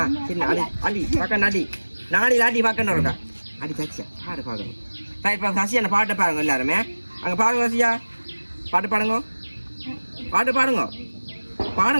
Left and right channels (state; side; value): inverted; both; correlation -1.00